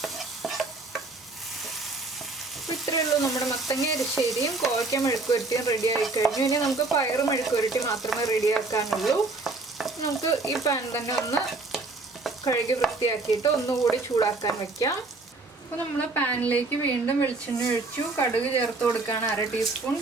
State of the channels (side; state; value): left; quieter; 3.5 dB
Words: ഇത്രയേ ഉള്ളൂ, നമ്മുടെ മത്തങ്ങ എരിശ്ശേരിയും കോവയ്ക്ക മെഴുക്കുവരട്ടിയും റെഡി ആയി കഴിഞ്ഞു. ഇനി നമുക്ക് പയറ് മെഴുക്കുവരട്ടി മാത്രമേ റെഡിയാക്കാനുള്ളൂ. നമുക്ക് ഈ പാൻ തന്നെ ഒന്ന് കഴുകി വൃത്തിയാക്കിയിട്ട് ഒന്നുകൂടി ചൂടാക്കാൻ വെക്കാം. അപ്പോൾ നമ്മൾ പാനിലേക്ക് വീണ്ടും വെളിച്ചെണ്ണ ഒഴിച്ചു. കടുക് ചേർത്ത് കൊടുക്കുകയാണ് 1/2 ടീസ്പൂൺ.